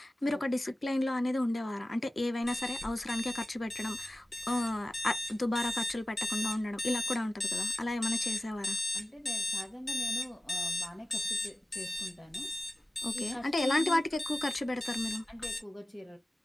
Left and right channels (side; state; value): both; normal; correlation 0.95